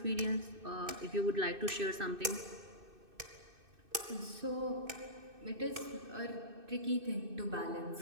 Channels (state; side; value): late; left; 2.6 ms